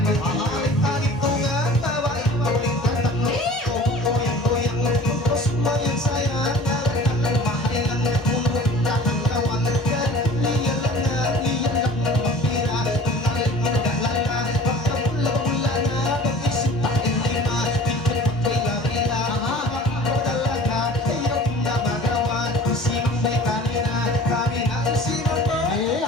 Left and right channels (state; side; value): normal; both; correlation 0.44